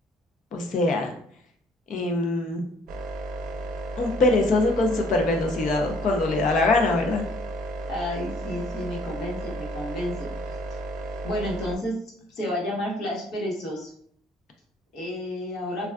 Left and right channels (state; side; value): normal; both; correlation 0.60